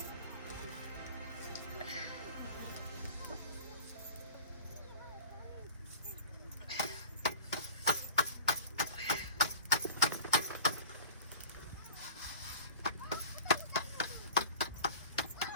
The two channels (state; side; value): inverted; both; correlation -0.39